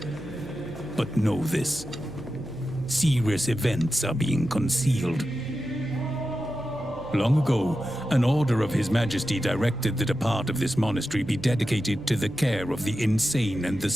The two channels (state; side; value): noise; right; hum, 17 dB below the sound